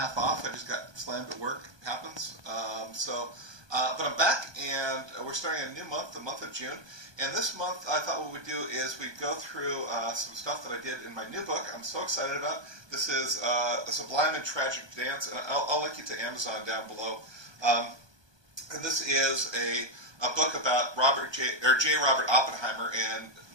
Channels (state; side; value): late; left; 1.2 ms